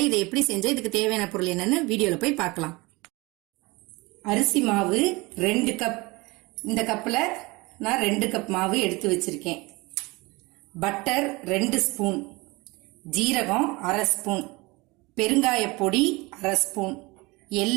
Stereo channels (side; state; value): left; quieter; 24.1 dB